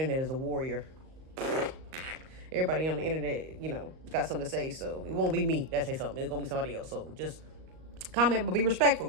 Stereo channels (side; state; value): left; late; 38 ms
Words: is a warrior. Everybody on the internet, got something to say, so it won't be me that say something. It's gonna be somebody else. So just comment, but be respectful.